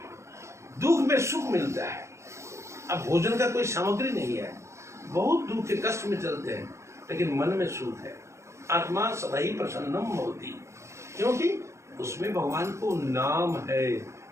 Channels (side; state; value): left; late; 0.14 ms